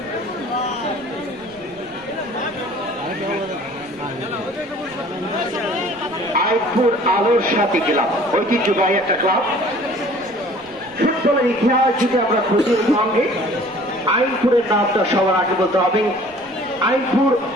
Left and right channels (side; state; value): right; noise; rumble, 28 dB below the sound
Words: আইপুর আলোসাদী ক্লাব ঐতিহ্যবাহী একটা ক্লাব। ফুটবলের ইতিহাস যদি আমরা খুঁজির সঙ্গে আইনপুরের নামটা সবার আগে বলতে হবে। আইনপুর